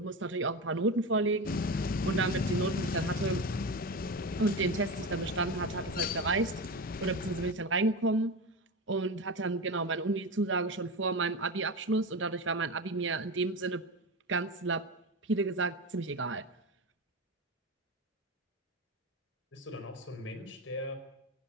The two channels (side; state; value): both; normal; correlation 0.22